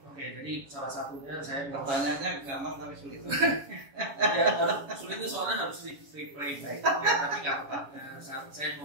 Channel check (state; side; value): late; left; 7.1 ms